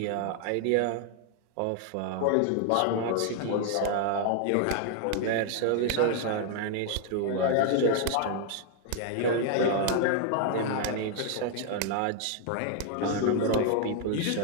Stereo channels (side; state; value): both; different; correlation 0.00